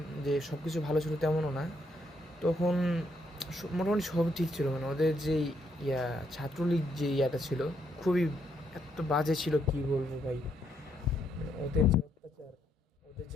যে সব কিছু ভালো ছিল তেমনও না। তখন মোটামুটি সব ঠিক ছিল। মানে ওদের যে ইয়া ছাত্রলীগ যে ইয়াটা ছিল, খুবই এত বাজে ছিল কি বলবো ভাই। মানে ওদের যে অত্যাচার, ওদের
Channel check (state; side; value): normal; both; correlation 0.75